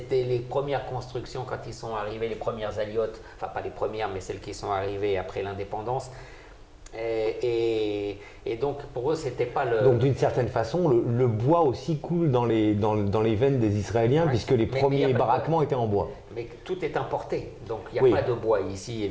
les premières constructions quand ils sont arrivés, les premières aliotes, enfin pas les premières, mais celles qui sont arrivées après l'indépendance. Et donc pour eux c'était pas le... Donc d'une certaine façon le bois aussi coule dans les veines des Israéliens, puisque les premiers baraquements étaient en bois. Mais tout est importé, donc il n'y a pas de bois ici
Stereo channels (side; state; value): both; identical; correlation 1.00